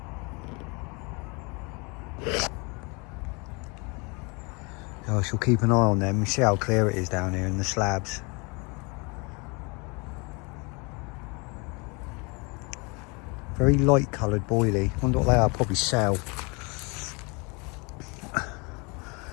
I shall keep an eye on them. You see how clear it is down here in the slabs. Very light coloured boilie. Wonder what they are. Probably cell. Let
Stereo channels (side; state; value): right; quieter; 29.9 dB